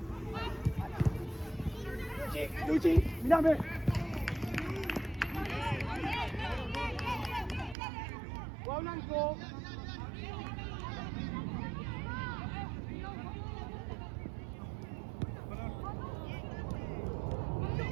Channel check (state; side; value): drops out; left; at 7.8 s